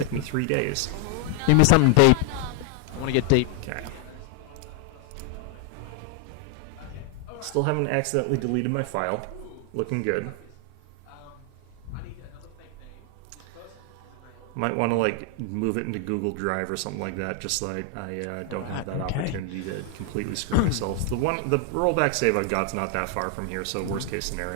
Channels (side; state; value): both; different; correlation 0.00